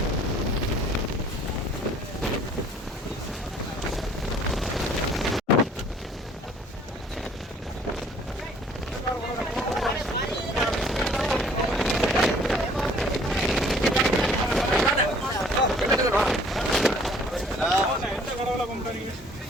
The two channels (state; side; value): normal; both; correlation 0.56